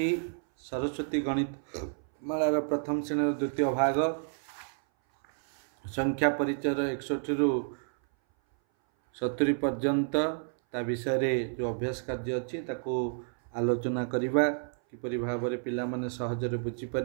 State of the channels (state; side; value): silent; left; 58 dB below the other